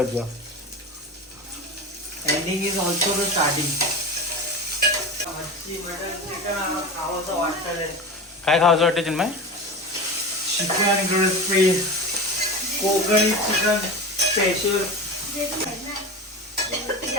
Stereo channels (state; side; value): normal; both; correlation 0.27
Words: जा. Ending is also the starting. खावंसं वाटतं. काय खावंसं वाटतं Chinmay? Chicken crispy Kokani chicken special.